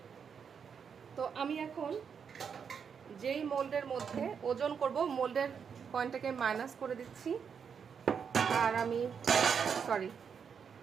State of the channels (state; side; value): quieter; left; 6.8 dB